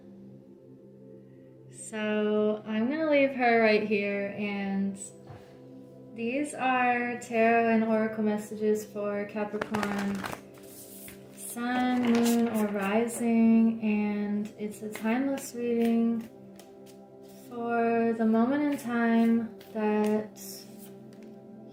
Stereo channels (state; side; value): identical; both; correlation 1.00